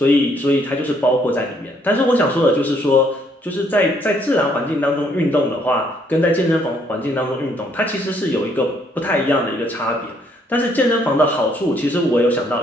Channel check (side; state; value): both; normal; correlation 0.68